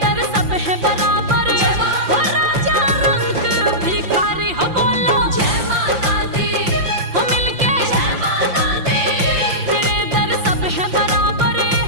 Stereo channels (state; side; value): late; left; 5.7 ms